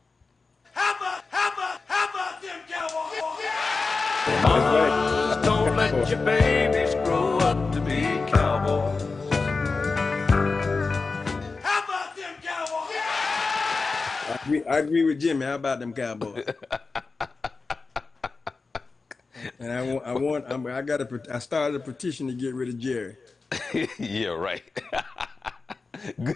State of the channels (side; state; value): right; quieter; 4.1 dB